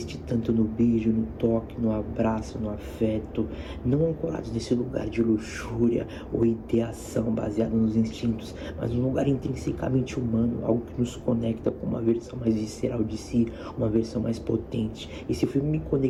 tanto no beijo, no toque, no abraço, no afeto, não ancorados nesse lugar de luxúria ou ideação baseada nos instintos, mas um lugar intrinsecamente humano, algo que nos conecta com uma versão mais visceral de si, uma versão mais potente. Esse filme me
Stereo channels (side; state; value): both; identical; correlation 1.00